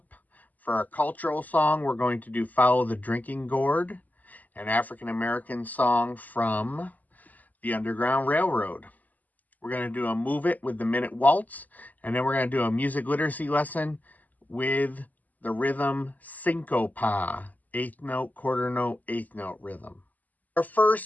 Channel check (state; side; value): late; right; 0.080 ms